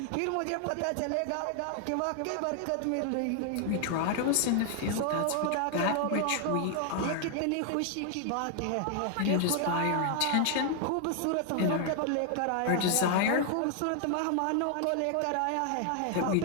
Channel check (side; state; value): both; different; correlation 0.00